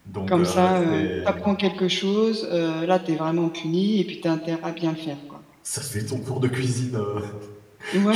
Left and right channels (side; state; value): both; identical; correlation 1.00